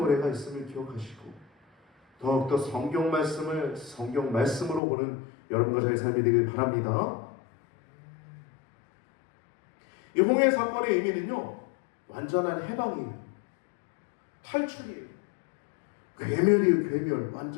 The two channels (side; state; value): right; drops out; at 4.8 s